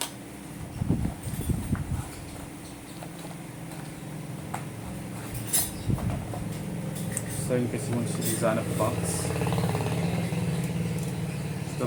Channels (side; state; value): both; identical; correlation 1.00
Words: So in case you want to design a box, it's